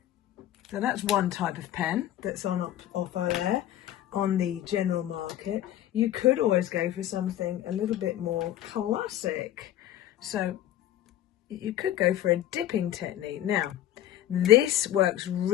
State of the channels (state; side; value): quieter; right; 12.5 dB